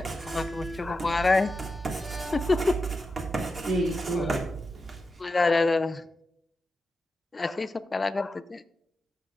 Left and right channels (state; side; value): normal; both; correlation 0.90